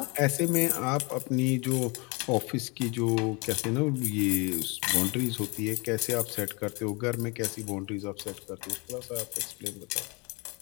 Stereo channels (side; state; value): right; quieter; 29.3 dB